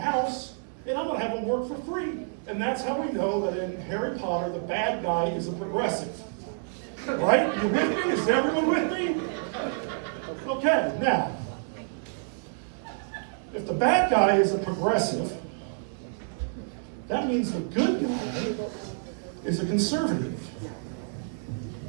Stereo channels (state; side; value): silent; left; 58 dB below the other